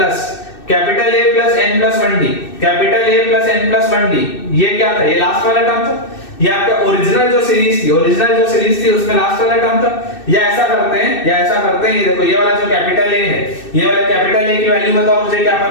capital A plus n+1d, capital A plus n+1d। ये क्या था, ये लास्ट वाला टर्म था, ये आपका ओरिजिनल जो सीरीज थी उसमें लास्ट वाला टर्म था। या ऐसा करते हैं, ये देखो ये वाला जो कैपिटल A है, ये वाला कैपिटल A की वैल्यू बताओ मुझे, क्या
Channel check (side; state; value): right; late; 2.6 ms